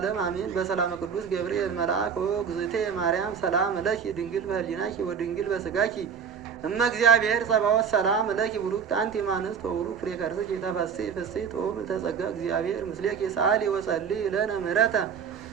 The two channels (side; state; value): left; quieter; 6.9 dB